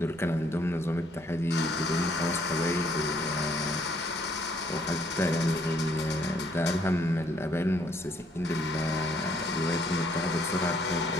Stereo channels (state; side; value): normal; both; correlation 0.66